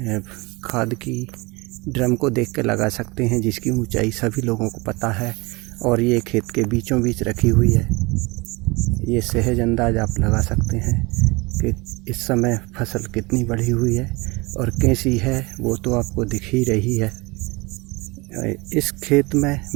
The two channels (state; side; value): quieter; left; 25.3 dB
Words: खाद की ड्रम को देख के लगा सकते हैं, जिसकी ऊंचाई सभी लोगों को पता है और ये खेत के बीचों बीच रखी हुई है। ये सहज अंदाज आप लगा सकते हैं कि इस समय फसल कितनी बढ़ी हुई है और कैसी है, वो तो आपको दिख ही रही है। इस खेत में